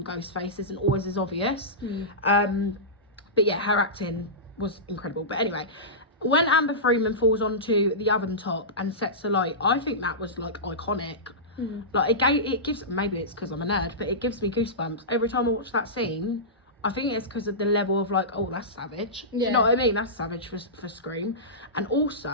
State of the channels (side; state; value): both; normal; correlation -0.17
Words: Ghostface isn't always as obvious. But yeah, her acting was incredible. But anyway, when Amber Freeman falls onto the oven top and sets the light, I think that was like iconic. Like it gives, maybe it's because I'm a nerd, but it gives me goosebumps every time I watch that scene. I think it's because of the level of like, oh, that's savage. Do you know what I mean? That's savage for Scream. And also,